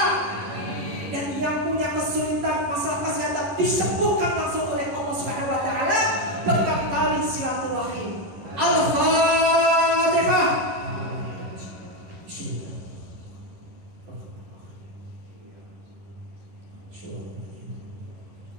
dan yang punya kesulitan masalah kesehatan disembuhkan langsung oleh Allah Subhanahu wa taala berkat tali silaturahim. Al-Fatihah.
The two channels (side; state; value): left; late; 11 ms